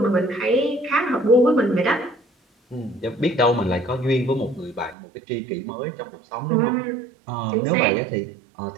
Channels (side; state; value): left; drops out; at 5.0 s